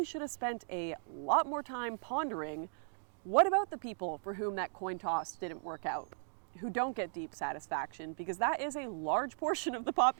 should have spent a lot more time pondering, what about the people for whom that coin toss didn't work out, who don't get deep satisfaction, because that is a large portion of the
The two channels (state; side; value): silent; left; digital silence